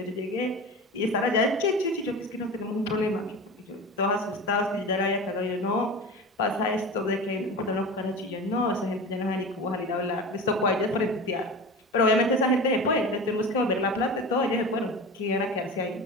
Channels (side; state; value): both; normal; correlation 0.31